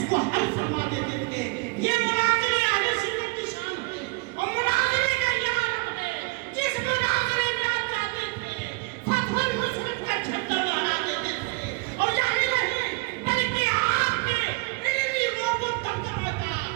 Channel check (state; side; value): quieter; left; 26.5 dB